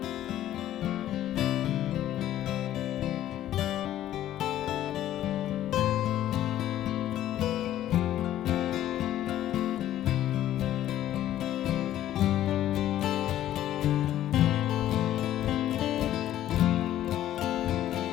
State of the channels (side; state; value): right; quieter; 12.7 dB